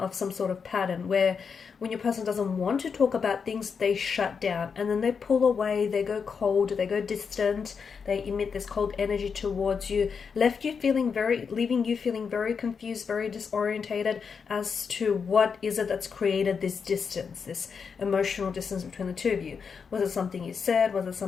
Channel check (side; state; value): right; quieter; 6.0 dB